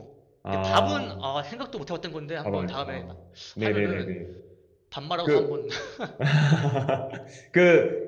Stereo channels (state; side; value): identical; both; correlation 1.00